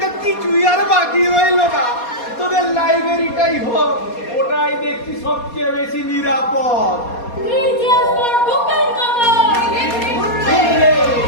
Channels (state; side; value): late; right; 4.2 ms